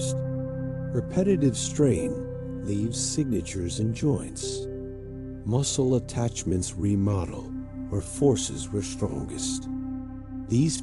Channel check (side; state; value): both; identical; correlation 1.00